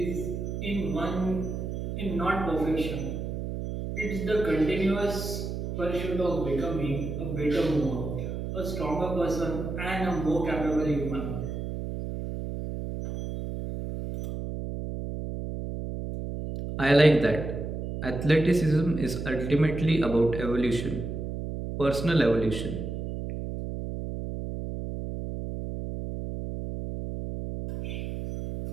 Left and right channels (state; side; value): noise; right; hum, 5 dB below the sound